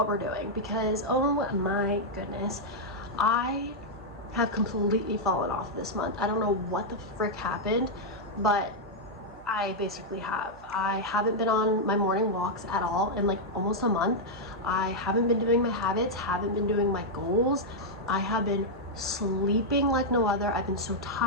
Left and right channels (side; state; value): right; noise; hum, 22 dB below the sound